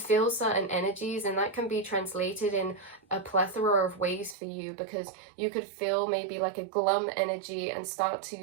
certain energies, and that can be translated in a plethora of ways for you, because you could feel maybe like a glum energy and start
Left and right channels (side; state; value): left; drops out; at 4.4 s